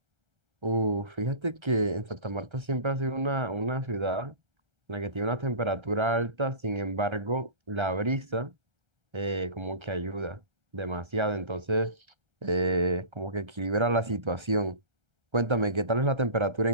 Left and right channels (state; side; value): late; left; 1.3 ms